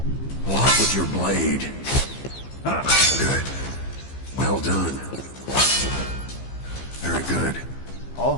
Block with your blade. Good. Well done. Very good.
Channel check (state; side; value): late; right; 15 ms